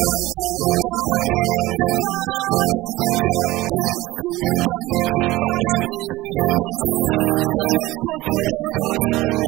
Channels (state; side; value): quieter; left; 18.5 dB